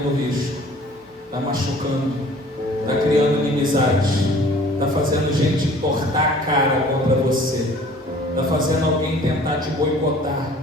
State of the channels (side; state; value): both; normal; correlation 0.51